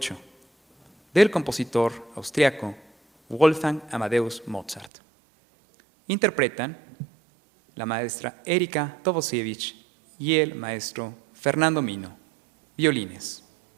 del compositor austriaco Wolfgang Amadeus Mozart. Interpretan la maestra Erika Tovosiewicz y el maestro Fernando Mino, violines.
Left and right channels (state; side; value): drops out; left; at 4.9 s